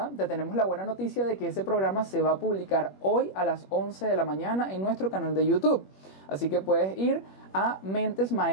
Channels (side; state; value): right; late; 21 ms